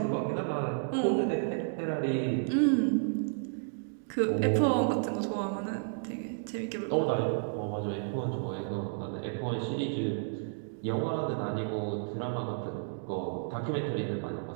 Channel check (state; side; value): silent; left; digital silence